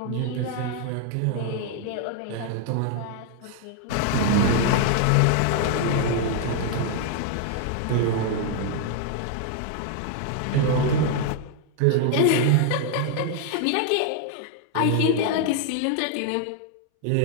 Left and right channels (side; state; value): both; different; correlation 0.00